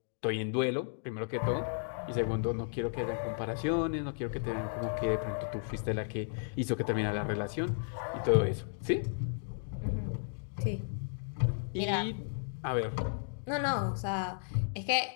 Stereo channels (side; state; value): right; silent; digital silence